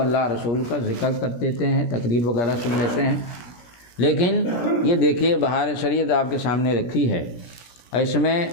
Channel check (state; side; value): late; right; 17 ms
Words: رسول کا ذکر کر دیتے ہیں، تقریر وغیرہ سن لیتے ہیں۔ لیکن یہ دیکھیے بہار شریعت آپ کے سامنے رکھی ہے، اس میں